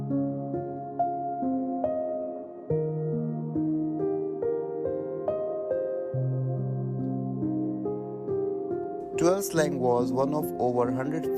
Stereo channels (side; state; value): both; identical; correlation 1.00